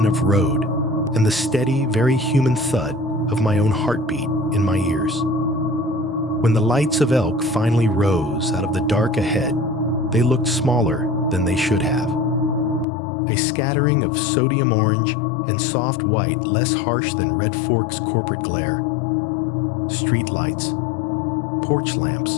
of road and the steady, very human thud of my own heartbeat in my ears. When the lights of Elk finally rose out of the dark ahead, they looked smaller than they should have. A scattering of sodium orange and soft white less harsh than Red Fork's corporate glare. Street lights, porch lamps,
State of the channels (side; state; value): right; drops out; at 12.9 s